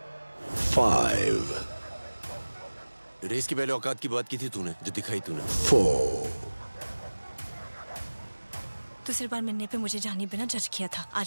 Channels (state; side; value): inverted; both; correlation -1.00